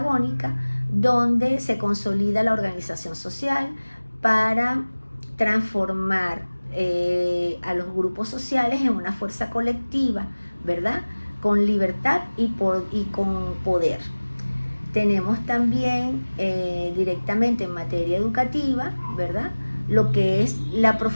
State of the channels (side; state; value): both; inverted; correlation -1.00